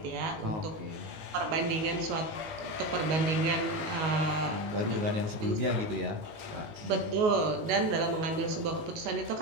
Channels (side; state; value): left; late; 19 ms